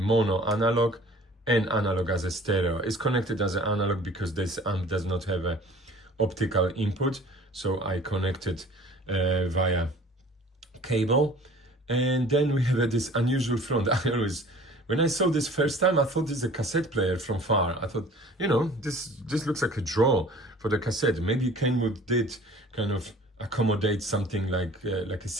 mono analog, and analog as a stereo. It's connected as an analog because this amp does not have a optical input, so I connected via cable. And then we have this unusual front. When I saw this first time, I thought this is a cassette player from far. I thought, you know, this looks like a draw for the cassette. Maybe Kenwood did kind of accommodate something like a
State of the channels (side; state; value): both; normal; correlation 0.48